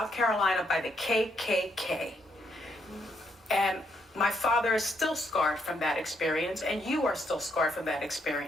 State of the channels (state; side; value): normal; both; correlation 0.75